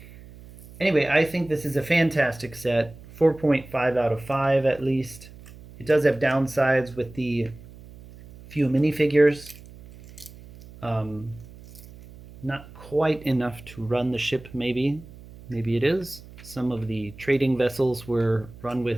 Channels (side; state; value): right; noise; hum, 19 dB below the sound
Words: Anyway, I think this is a fantastic set, 4.5 out of 5 at least. It does have downsides with the few minifigures. Not quite enough to run the ship, maybe. Maybe it is. Some of the trading vessels were run